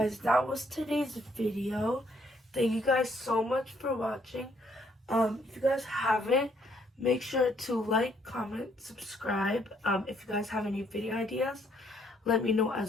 that was today's video. Thank you guys so much for watching. If you guys haven't, make sure to like, comment, subscribe. If you guys have any video ideas, let me know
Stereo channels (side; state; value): both; normal; correlation 0.68